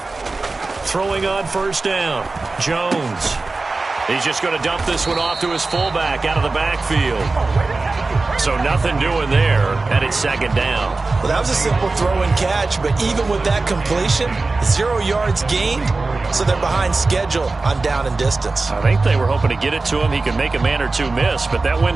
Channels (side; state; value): left; quieter; 3.6 dB